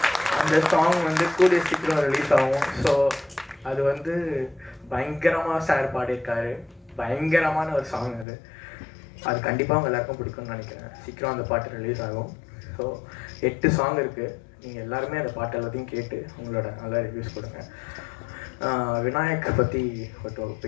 அந்த சாங் வந்து கூடிய சீக்கிரம் ரிலீஸ் ஆகும். ஸோ அது வந்து பயங்கரமாக சார் பாடியிருக்காரு, பயங்கரமான ஒரு சாங் அது கண்டிப்பாக அவங்க எல்லாருக்கும் பிடிக்கும்னு நினைக்கிறேன். சீக்கிரம் அந்த பாட்டு ரிலீஸ் ஆகும். ஸோ 8 சாங் இருக்குது. நீங்கள் எல்லாருமே அந்த பாட்டு எல்லாத்தையும் கேட்டு உங்களோட நல்ல ரிவ்யூஸ் கொடுங்க. விநாயக்கை பற்றி கொஞ்சம்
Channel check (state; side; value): drops out; right; at 8.2 s